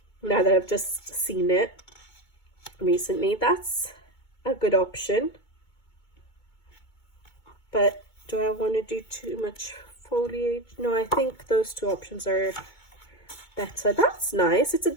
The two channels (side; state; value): right; late; 2.2 ms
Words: that I've just seen it recently. That's a good option. But do I want to do too much foliage? No, I think those two options are better. That's nice. It's a